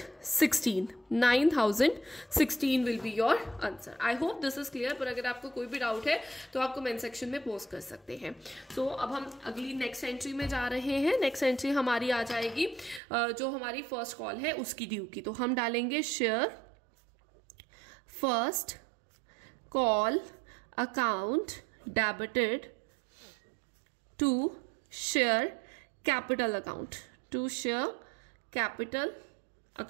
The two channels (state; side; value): drops out; left; at 13.0 s